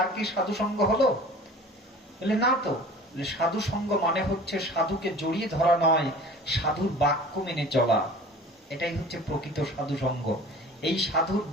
কি সাধু সঙ্গ হলো? বলে না তো। সাধু সঙ্গ মানে হচ্ছে সাধুকে জড়িয়ে ধরা নয়, সাধুর বাক্য মেনে চলা। এটাই হচ্ছে প্রকৃত সাধু সঙ্গ। এই সাধুর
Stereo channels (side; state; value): both; normal; correlation 0.43